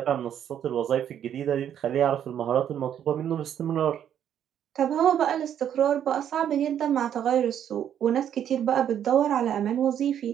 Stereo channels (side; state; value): left; quieter; 9.7 dB